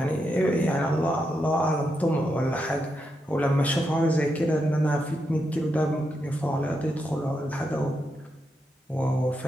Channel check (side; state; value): both; normal; correlation 0.84